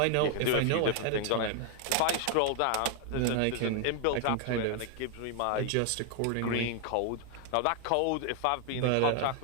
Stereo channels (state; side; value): different; both; correlation 0.00